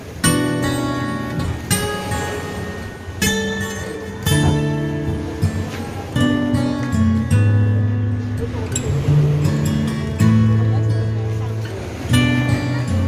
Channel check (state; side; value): identical; both; correlation 1.00